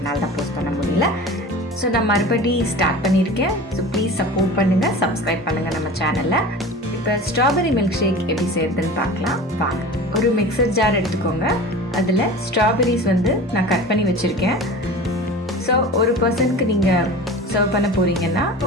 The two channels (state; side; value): normal; both; correlation 0.36